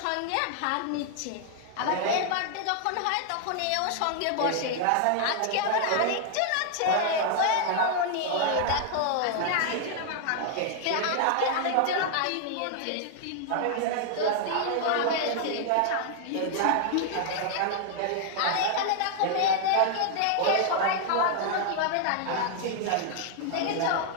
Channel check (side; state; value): both; different; correlation 0.00